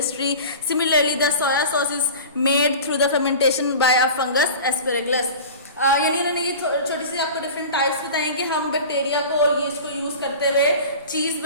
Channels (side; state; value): both; inverted; correlation -0.36